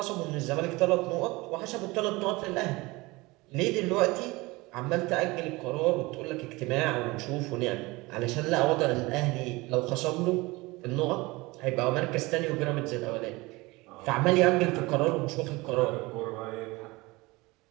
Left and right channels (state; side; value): quieter; left; 22.6 dB